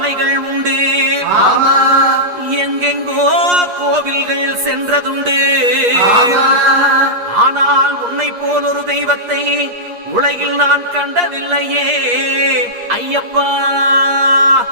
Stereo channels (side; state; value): left; late; 8.4 ms